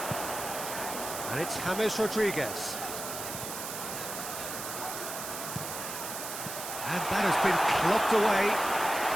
And it's James Rodriguez. And that has been clubbed away.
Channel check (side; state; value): right; noise; hiss, 7 dB below the sound